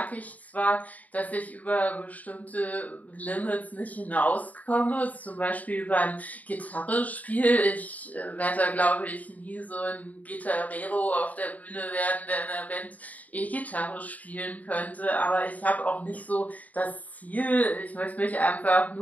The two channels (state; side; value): late; right; 0.074 ms